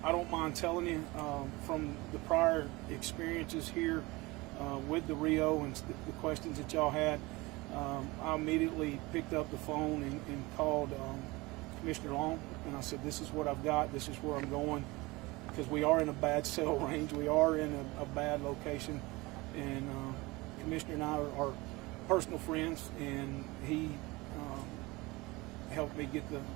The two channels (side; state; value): left; quieter; 22.6 dB